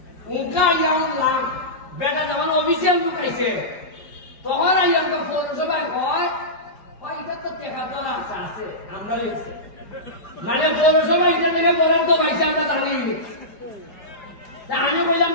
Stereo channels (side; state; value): right; late; 5.0 ms